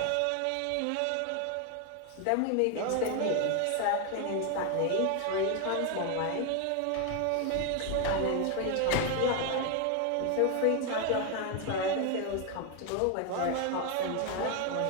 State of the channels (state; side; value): different; both; correlation 0.01